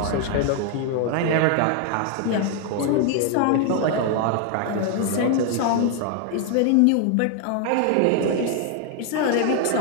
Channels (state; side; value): different; both; correlation 0.00